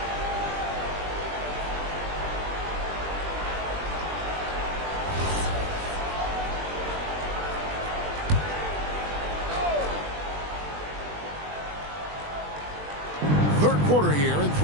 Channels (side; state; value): left; late; 20 ms